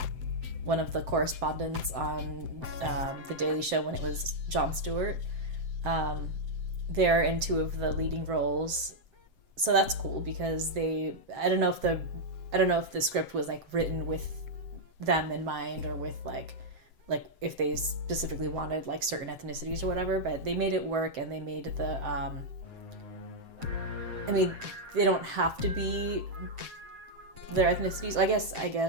one of the correspondents on The Daily Show when it was Jon Stewart. They're in 2 of the leading roles, so that's cool because I don't know if the script was like written with them in mind or with like if they specifically wanted like certain ethnicities or whatever, but they made it work, and they made the I mean, they don't have to be their ethnicities. I guess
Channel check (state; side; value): late; left; 7.8 ms